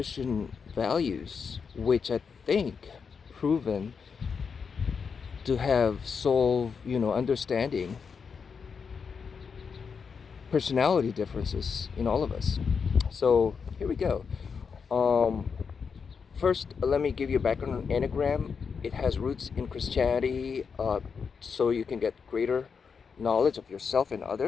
values, which I think proven to have solved, understanding personality differences in all of us. So here we go. Um, First, let me give you a background on Enneagram. It has roots in Christianity, so you can get greater knowledge of yourself and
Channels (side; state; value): right; quieter; 5.9 dB